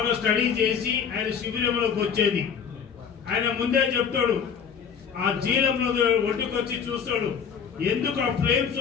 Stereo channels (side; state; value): right; quieter; 7.0 dB